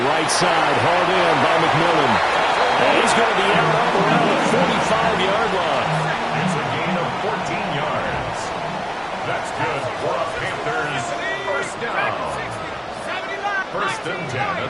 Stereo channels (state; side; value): identical; both; correlation 1.00